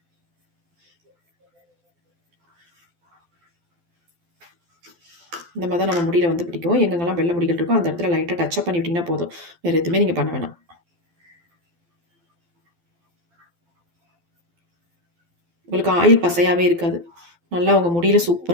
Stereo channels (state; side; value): late; left; 12 ms